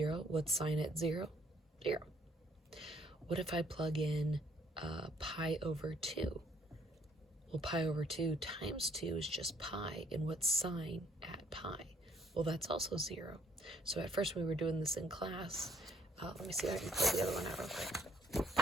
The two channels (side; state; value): both; normal; correlation 0.64